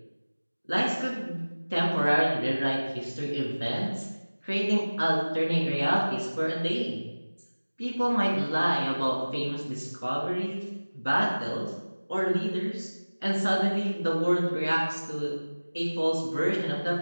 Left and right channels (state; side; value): inverted; both; correlation -1.00